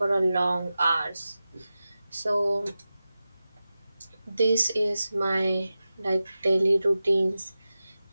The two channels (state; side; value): inverted; both; correlation -0.94